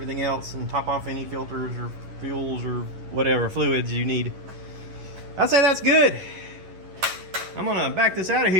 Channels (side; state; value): left; late; 11 ms